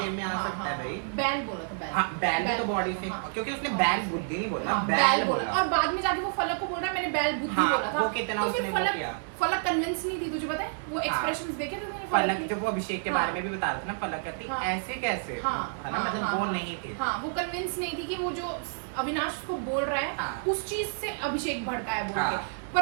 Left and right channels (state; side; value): silent; left; 56 dB below the other